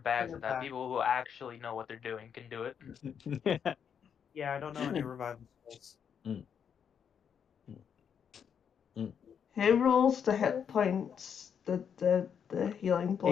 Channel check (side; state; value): right; quieter; 7.6 dB